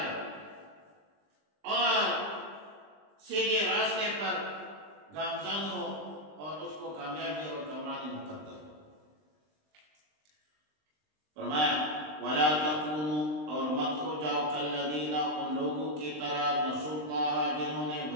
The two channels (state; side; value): late; left; 20 ms